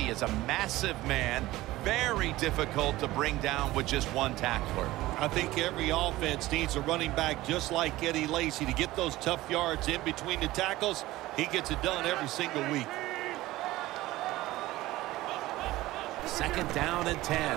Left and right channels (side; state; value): left; quieter; 17.4 dB